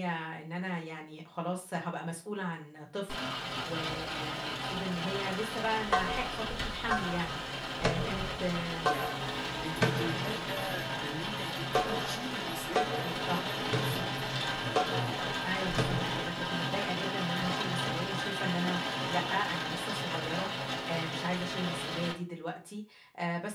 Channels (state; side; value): identical; both; correlation 1.00